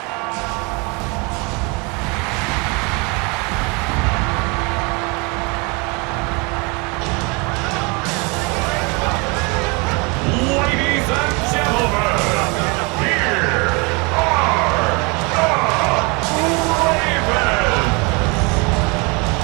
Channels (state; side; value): quieter; left; 29.5 dB